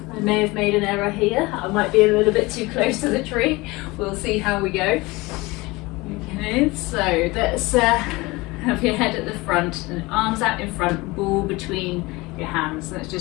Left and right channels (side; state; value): right; quieter; 22.6 dB